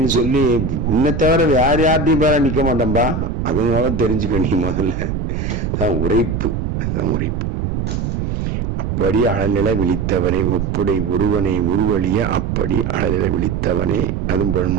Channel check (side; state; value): right; noise; rumble, 2 dB below the sound